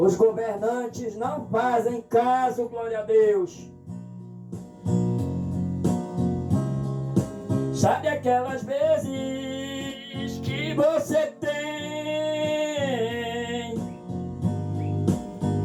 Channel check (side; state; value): both; identical; correlation 1.00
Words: governantes não fazem caso, glória a Deus. Sabe aquelas vezes que você tem